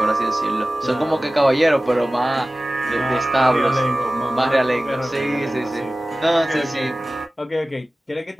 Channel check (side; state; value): both; normal; correlation 0.96